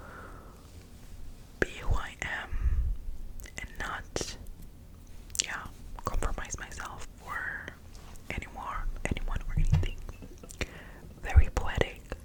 be who I am and not, compromise myself for anyone or anything. Very poetic.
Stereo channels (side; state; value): both; identical; correlation 1.00